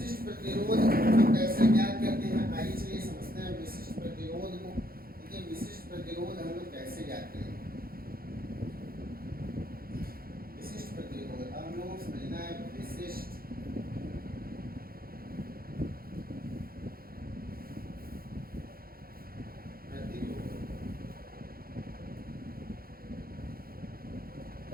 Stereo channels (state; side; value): late; left; 0.43 ms